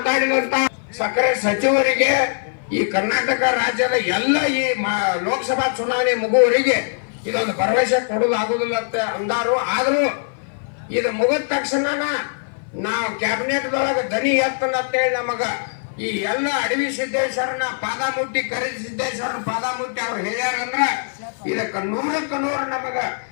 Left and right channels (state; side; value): silent; right; 57 dB below the other